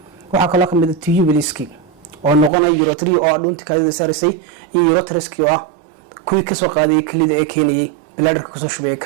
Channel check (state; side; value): drops out; left; at 2.5 s